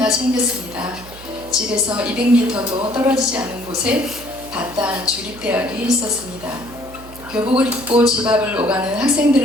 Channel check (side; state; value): right; noise; hum, 18 dB below the sound